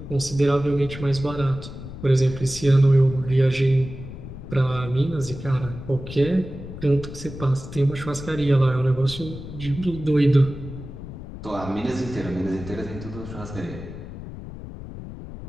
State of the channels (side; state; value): left; noise; rumble, 11 dB below the sound